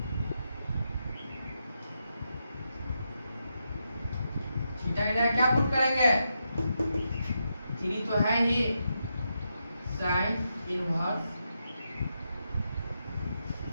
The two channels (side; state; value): both; inverted; correlation -0.84